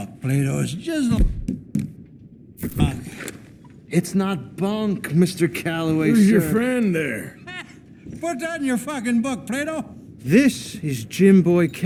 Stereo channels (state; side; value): identical; both; correlation 1.00